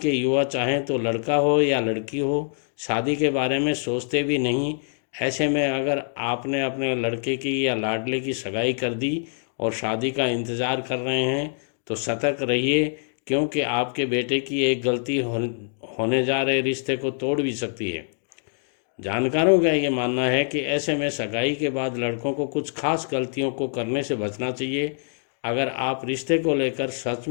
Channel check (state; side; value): silent; right; digital silence